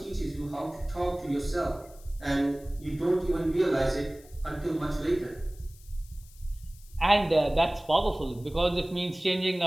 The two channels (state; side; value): noise; left; hiss, 24 dB below the sound